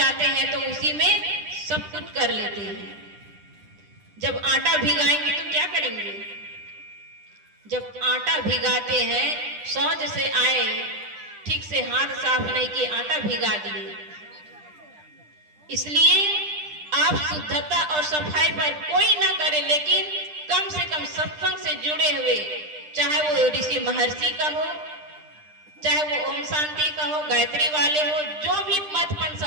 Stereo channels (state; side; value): late; left; 10 ms